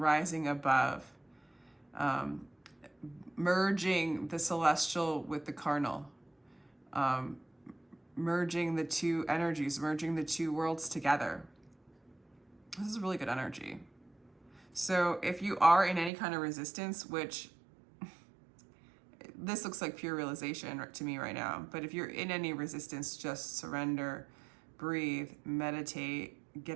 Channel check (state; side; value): drops out; left; at 16.1 s